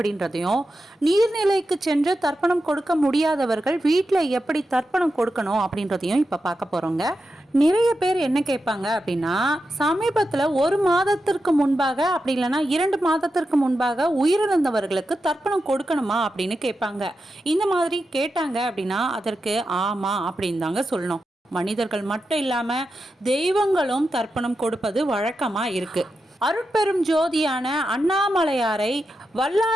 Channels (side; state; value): both; normal; correlation 0.89